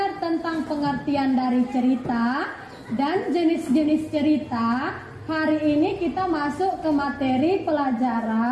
tentang pengertian dari cerita dan jenis-jenis cerita, hari ini kita masuk ke materi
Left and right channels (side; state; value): both; identical; correlation 1.00